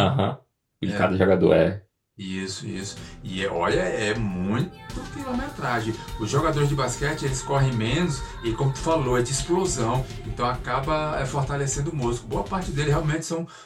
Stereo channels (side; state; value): both; identical; correlation 1.00